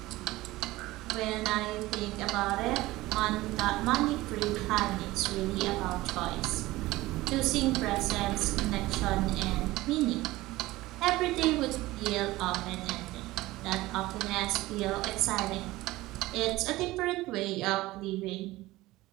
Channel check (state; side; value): quieter; left; 18.5 dB